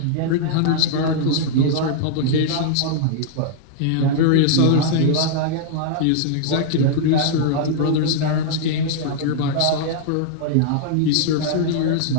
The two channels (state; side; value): different; both; correlation -0.01